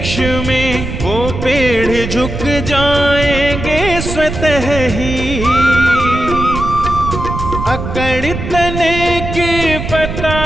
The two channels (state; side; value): noise; right; rumble, 6 dB below the sound